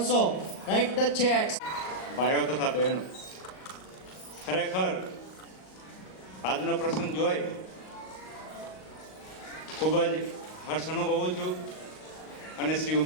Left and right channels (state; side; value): late; right; 38 ms